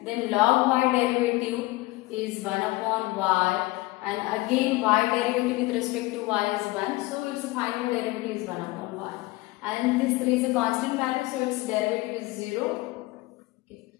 Then log y derivative is 1 upon y, and again y derivative with respect to y is 1, so its final derivative is 1 upon y. And this 3 is a constant value, so its derivative is 0.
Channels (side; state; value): right; quieter; 20.8 dB